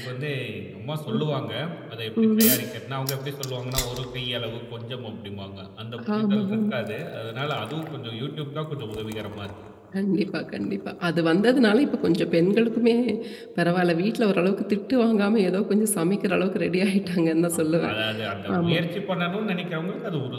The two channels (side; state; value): both; identical; correlation 1.00